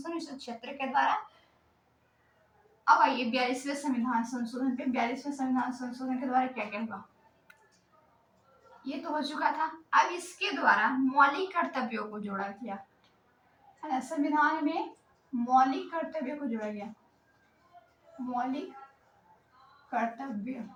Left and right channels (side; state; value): both; identical; correlation 1.00